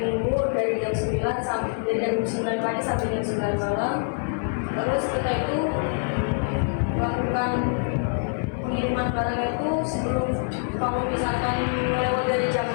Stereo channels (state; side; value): silent; right; 60 dB below the other